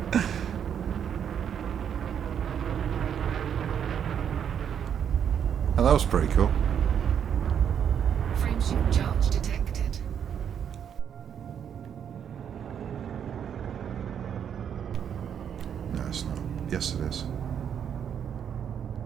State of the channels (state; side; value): quieter; left; 8.4 dB